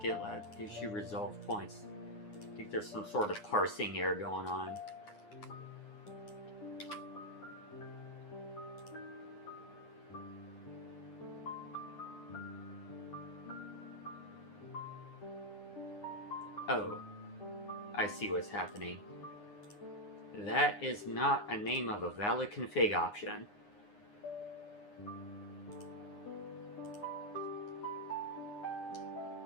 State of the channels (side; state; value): right; late; 9.7 ms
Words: GitLab issue resolve points. I think there's some sort of parsing error going on. Oh, I see what's happening. That is not a name of a valid config option.